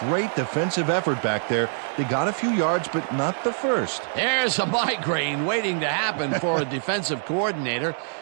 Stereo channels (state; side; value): silent; left; digital silence